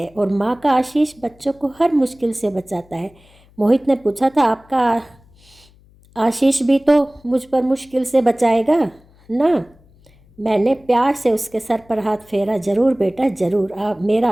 और माँ का आशीष बच्चों को हर मुश्किल से बचाता है। मोहित ने पूछा था, आपका आशीष भी तो मुझ पर मुश्किल से बचाएगा ना? मैंने प्यार से उसके सर पर हाथ फेरा। ज़रूर बेटा ज़रूर, आप मेरा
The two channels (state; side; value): noise; left; hum, 29 dB below the sound